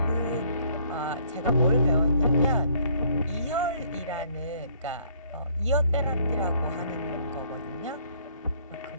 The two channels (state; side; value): inverted; both; correlation -0.63